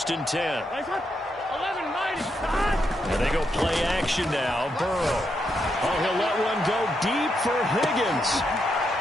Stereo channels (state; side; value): normal; both; correlation 0.81